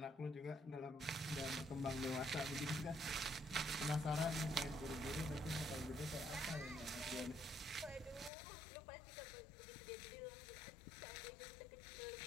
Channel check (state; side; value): drops out; right; at 8.3 s